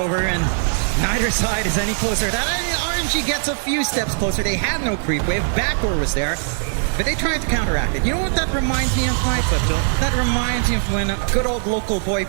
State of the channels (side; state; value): left; silent; 58 dB below the other